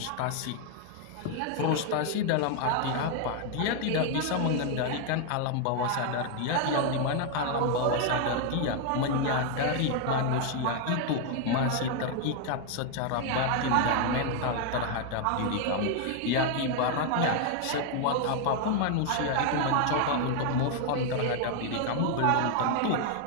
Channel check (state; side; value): different; both; correlation 0.00